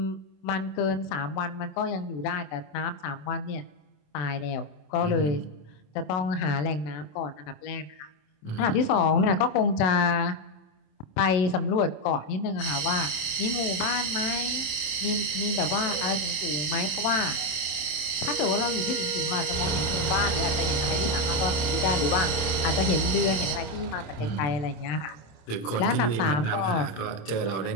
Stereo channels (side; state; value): right; late; 27 ms